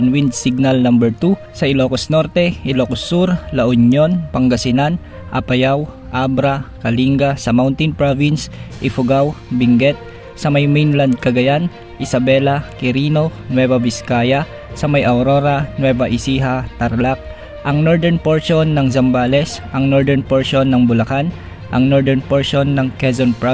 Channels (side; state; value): both; identical; correlation 1.00